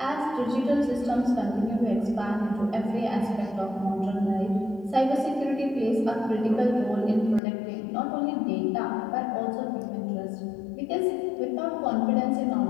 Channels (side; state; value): right; drops out; at 7.4 s